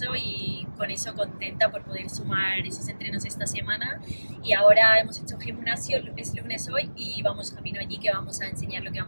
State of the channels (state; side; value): inverted; both; correlation -1.00